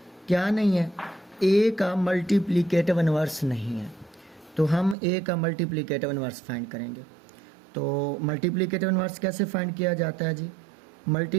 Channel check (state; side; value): drops out; left; at 5.0 s